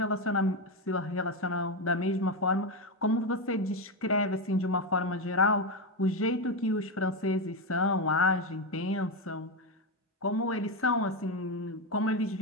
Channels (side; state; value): both; normal; correlation 0.10